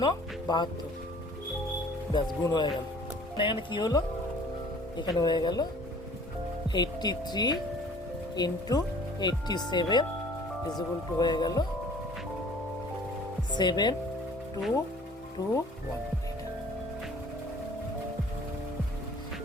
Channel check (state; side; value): normal; both; correlation 0.51